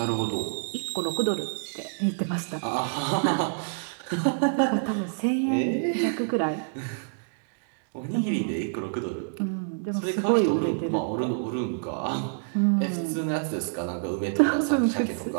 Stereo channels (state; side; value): silent; left; digital silence